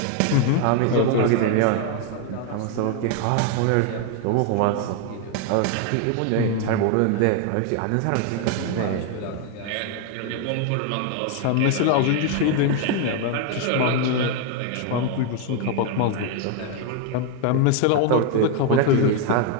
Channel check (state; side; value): different; both; correlation 0.01